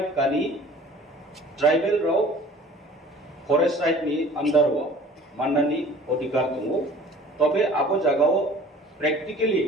কানি ট্রাইবাল রাও फरेस्ट राइट नि अंदर हो माननानि अधिकार दङ तबे आबो जागाव प्रेक्टिकली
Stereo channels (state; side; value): normal; both; correlation 0.48